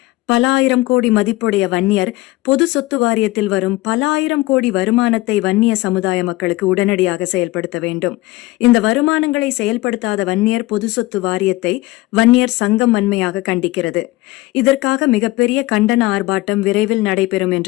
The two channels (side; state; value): right; quieter; 19.4 dB